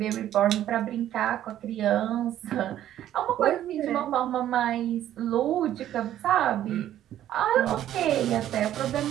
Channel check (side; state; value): left; quieter; 12.0 dB